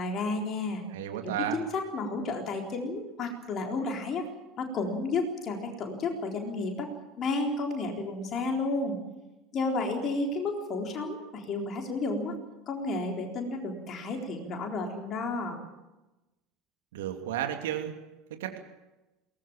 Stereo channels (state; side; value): normal; both; correlation 0.38